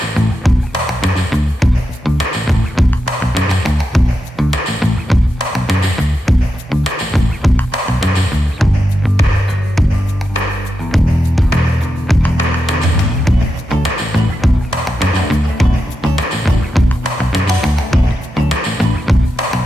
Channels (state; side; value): normal; both; correlation 0.88